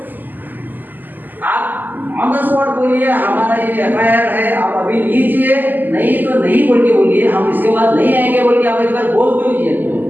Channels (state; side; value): late; left; 0.087 ms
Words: आप ऑन द स्पॉट बोलिए हमारा ये एफआईआर है, आप अभी लीजिए, नहीं तो नहीं बोल के बोलिए, हम इसके बाद नहीं आएंगे बोल के आप एक बार बोल दीजिए।